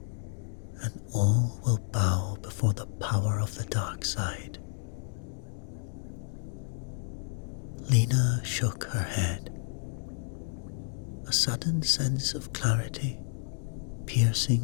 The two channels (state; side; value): silent; right; digital silence